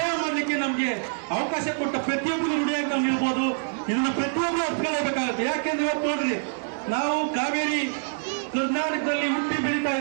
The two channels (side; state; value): left; silent; digital silence